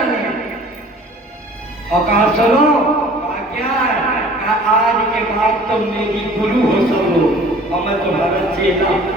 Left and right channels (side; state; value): both; normal; correlation 0.49